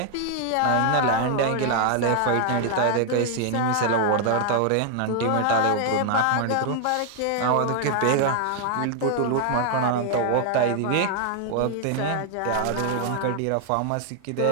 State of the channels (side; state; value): both; different; correlation 0.00